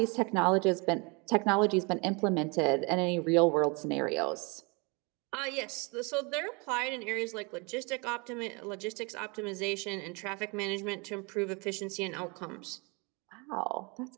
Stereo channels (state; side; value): quieter; left; 30.1 dB